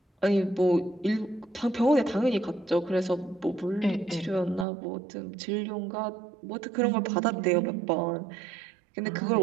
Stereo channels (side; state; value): left; drops out; at 4.7 s